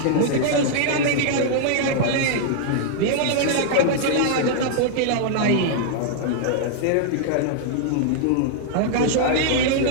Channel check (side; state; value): both; different; correlation -0.01